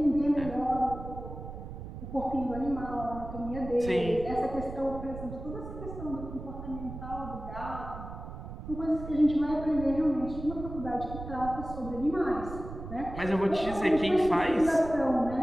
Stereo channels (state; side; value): noise; right; rumble, 10 dB below the sound